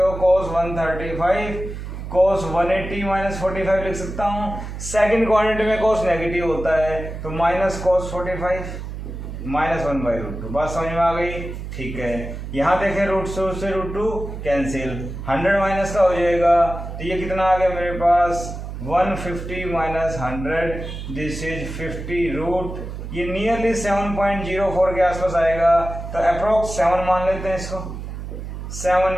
cos 135 cos 180 माइनस 45 लिख सकता हूँ। सेकंड क्वाड्रेंट में cos नेगेटिव होता है, तो माइनस cos 45 माइनस 1/√2। बात समझ में आ गई। ठीक है, यहाँ देखें √2 से √2 कैंसिल, 100 माइनस का हो जाएगा, तो ये कितना आ गया मेरे पास 150 माइनस 100, दिस इज 50 ये नियरली 7.04 के आसपास आएगा, तो अप्रोक्स 7 मान लेते हैं इसको,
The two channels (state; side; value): noise; right; hum, 8 dB below the sound